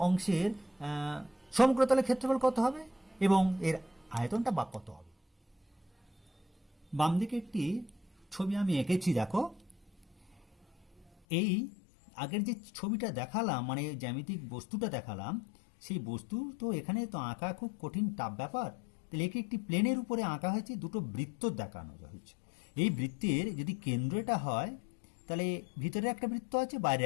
অংশের সমগ্রতলের ক্ষেত্রফল কত হবে এবং এর আয়তনটা বা কত হবে? বাম দিকে একটি ছবি আমি এঁকেছি, দেখো এই আগের যে ছবিটা দেখালাম, মানে জ্যামিতিক বস্তুটা দেখালাম, সেই বস্তু তো এখানে তো আঁকা খুব কঠিন টাফ ব্যাপার। তাহলে একে একটি প্লেনের উপরে আঁকা হয়েছে, দুটো বৃত্ত দেখানো হয়েছে। এই বৃত্তের যদি কেন্দ্রটা হয় তাহলে ভিতরে একটা বৃত্ত আছে, বাইরে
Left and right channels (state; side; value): drops out; right; at 11.1 s